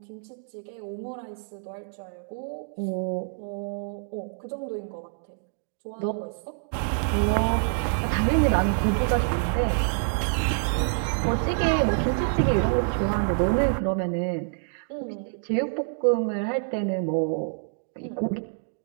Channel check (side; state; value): left; silent; digital silence